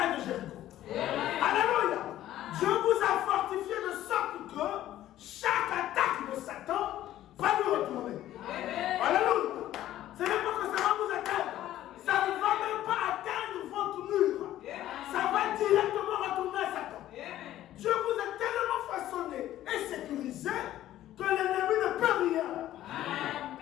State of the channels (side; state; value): right; quieter; 13.4 dB